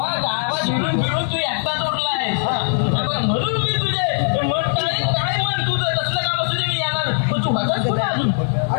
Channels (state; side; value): silent; right; digital silence